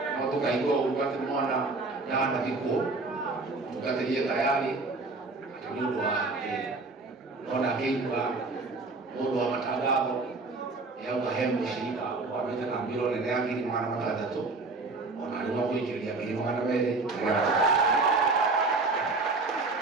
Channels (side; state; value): left; quieter; 3.6 dB